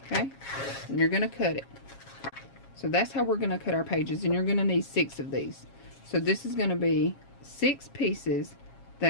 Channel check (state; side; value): late; right; 7.3 ms